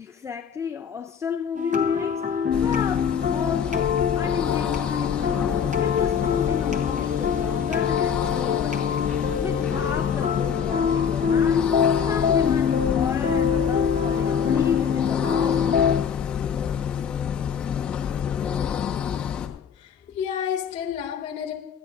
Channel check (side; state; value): right; quieter; 7.3 dB